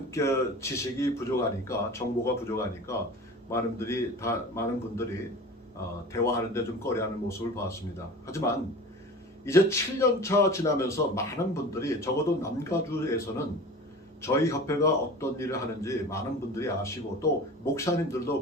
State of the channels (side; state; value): both; normal; correlation 0.37